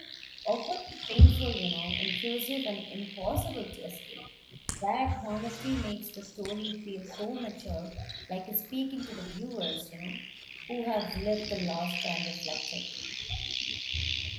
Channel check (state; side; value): identical; both; correlation 1.00